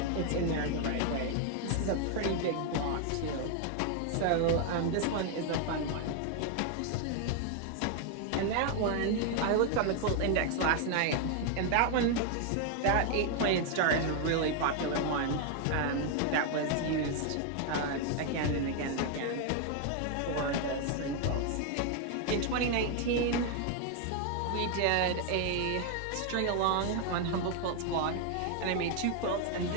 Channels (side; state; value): both; different; correlation 0.00